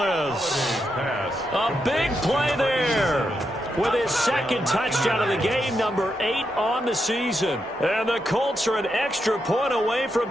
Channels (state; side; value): normal; both; correlation 0.83